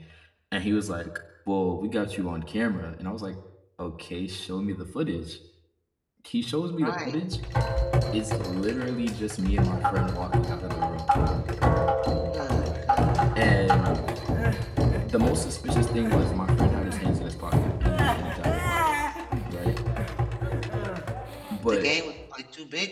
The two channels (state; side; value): identical; both; correlation 1.00